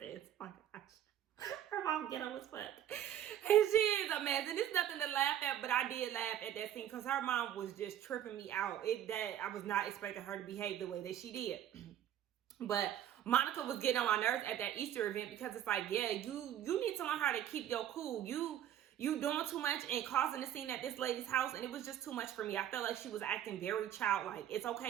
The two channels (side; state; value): left; quieter; 11.0 dB